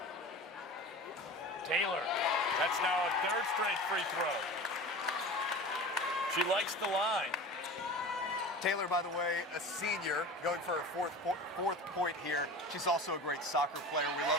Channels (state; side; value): normal; both; correlation 0.34